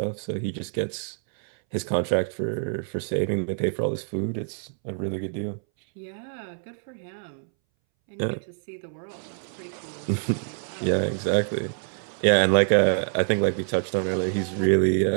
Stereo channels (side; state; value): left; silent; 61 dB below the other